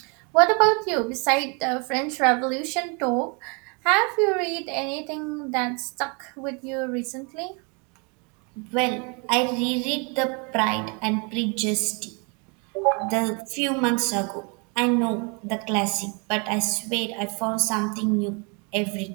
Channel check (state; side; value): quieter; left; 33.5 dB